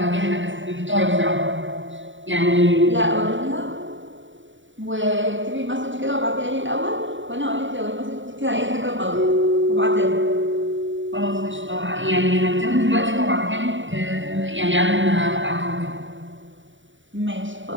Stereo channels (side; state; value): left; late; 0.55 ms